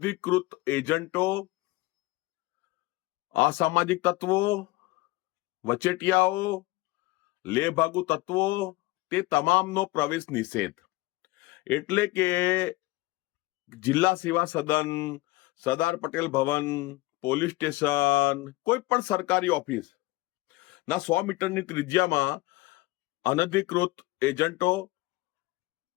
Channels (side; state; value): right; quieter; 20.2 dB